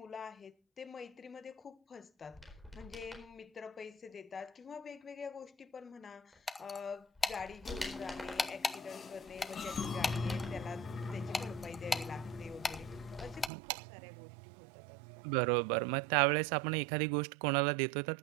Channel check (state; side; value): drops out; left; at 13.5 s